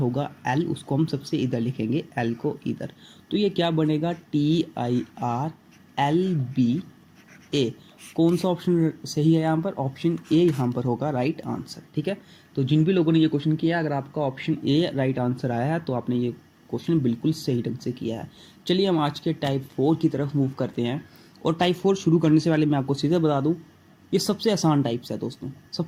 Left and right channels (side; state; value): both; identical; correlation 1.00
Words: L उसको हम सबसे इधर लिखेंगे, L को इधर। तो ये क्या बनेगा, TIRLBA। कौन सा ऑप्शन सही है यहाँ पर, ऑप्शन ए यहाँ पर होगा राइट आंसर। ठीक है, तो जिन भी लोगों ने ये क्वेश्चन किया, अगर आपका ऑप्शन ए राइट आंसर आया है तो आपने ये क्वेश्चन बिल्कुल सही ढंग से किया है। चलिए हम आज के टाइप 4 की तरफ मूव करते हैं। और टाइप 4 शुरू करने से पहले मैं आपको सीधे बता दूँ, ये सबसे आसान टाइप्स है दोस्तों।